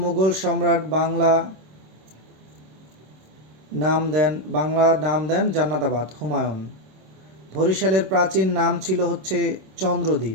মুঘল সম্রাট বাংলা নাম দেন জান্নাতাবাদ? হুমায়ুন। বরিশালের প্রাচীন নাম ছিল হচ্ছে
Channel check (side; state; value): left; late; 26 ms